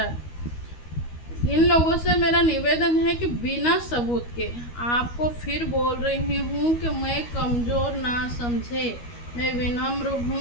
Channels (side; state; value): right; late; 13 ms